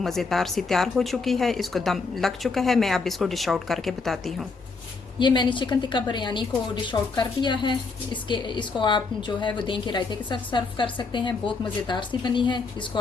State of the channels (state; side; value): quieter; right; 4.4 dB